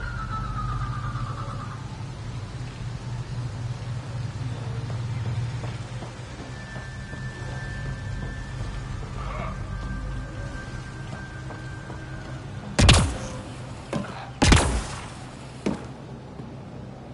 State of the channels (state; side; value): identical; both; correlation 1.00